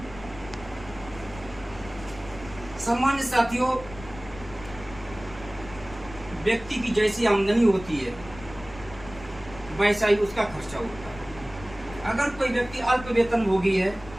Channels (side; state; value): left; noise; rumble, 16 dB below the sound